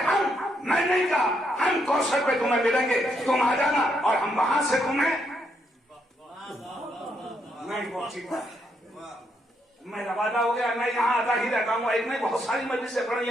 मैं नहीं कहा हम कौसर पे तुम्हें मिलेंगे, तुम आ जाना और हम वहां से तुम्हें नहीं पहुंचेगा। मेरा वादा हो गया, मैं यहाँ आता ही रहता हूँ, एक नहीं बहुत सारी मजलिसें पढ़ी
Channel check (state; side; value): normal; both; correlation 0.76